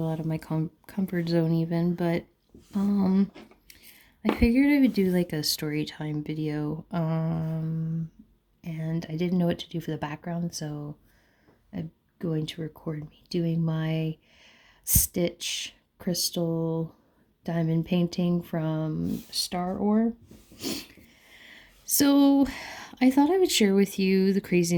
out of my comfort zone even, but I figured I would do like a story time video. And I didn't know what to do for the background, so I'm going to record me doing my Stitch crystal diamond painting from Star Ore. So, I thought I would share with you the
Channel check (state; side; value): identical; both; correlation 1.00